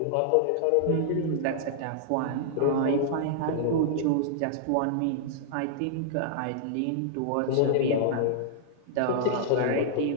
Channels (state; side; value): different; both; correlation -0.01